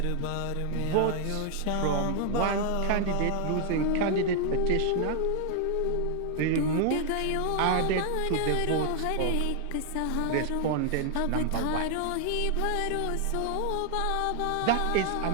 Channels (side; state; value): both; different; correlation 0.00